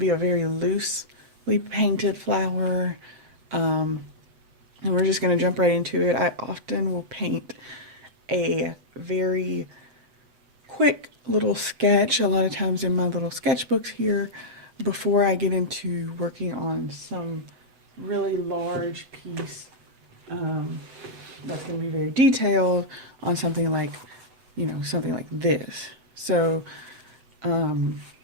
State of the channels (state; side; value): late; left; 8.0 ms